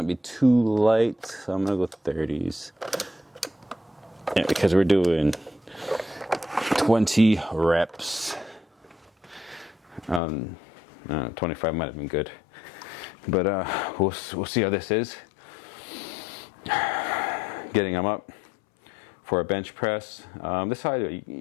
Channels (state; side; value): drops out; right; at 10.2 s